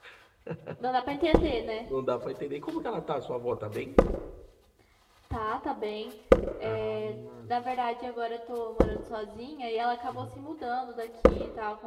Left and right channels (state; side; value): identical; both; correlation 1.00